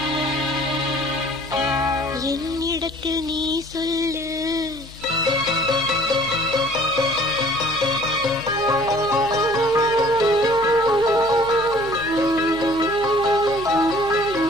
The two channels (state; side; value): normal; both; correlation 0.53